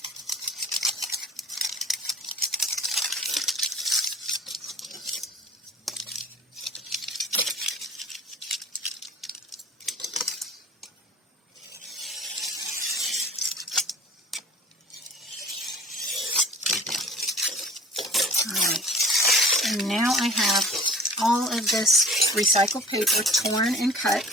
And now I have all of this recycled paper torn and cut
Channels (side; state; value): both; normal; correlation 0.45